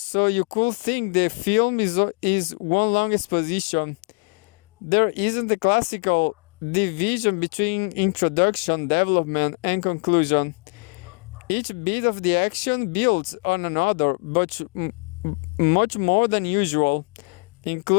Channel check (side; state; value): right; quieter; 34.0 dB